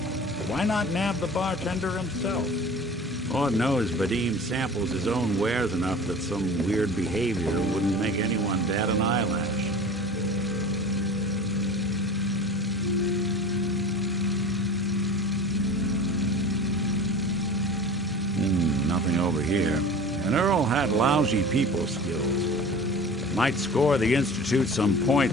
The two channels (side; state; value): both; normal; correlation 0.38